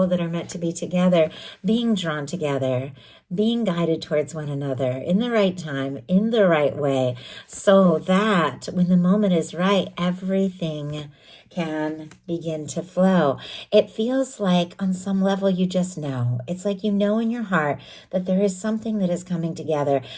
that are meant to be together, being drawn together, being guided towards one another in the right time, in the right way, so that when the moment is right, everything can begin to flow. It feels like on some level you just know. It's like you know in your heart that there is something that is coming together.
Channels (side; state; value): both; identical; correlation 1.00